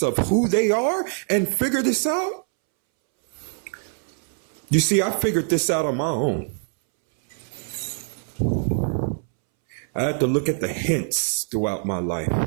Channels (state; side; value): silent; left; 63 dB below the other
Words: of who they are and figure this out. You see, I figured this out on my own. I had to look at the hints throughout my